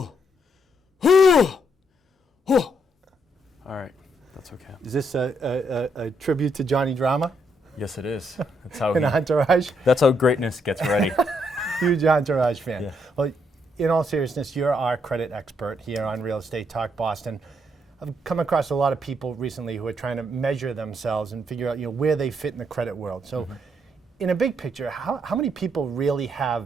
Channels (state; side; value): normal; both; correlation 0.75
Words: right, that's okay. Is this a tribute to Johnny Drama Yes, it is. That's how in Entourage? That's how greatness gets ready. Huge Entourage fan. Yeah. Well, in all seriousness, you're our credit expert here on Real Estate Talk Boston. I've come across a lot of people recently who are trying to measure themselves and figure out where they fit in the credit world. So in a big picture, how many people really have